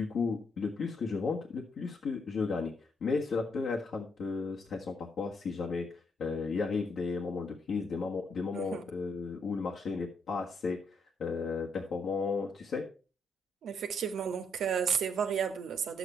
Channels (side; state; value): both; normal; correlation 0.74